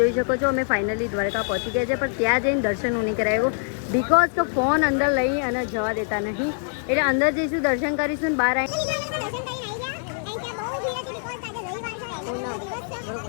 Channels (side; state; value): right; silent; digital silence